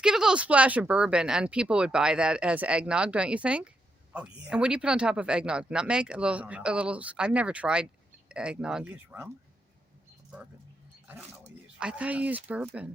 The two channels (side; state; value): both; normal; correlation 0.82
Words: give it a little splash of bourbon, and people would buy that as eggnog, don't you think? oh, yeah. And what do you put on top of eggnog? Nutmeg? don't know. A little. I've never tried eggnog. You use rum? Or bourbon? I don't know what you use. I thought you used